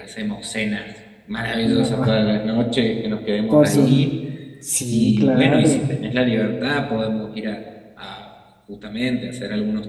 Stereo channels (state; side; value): identical; both; correlation 1.00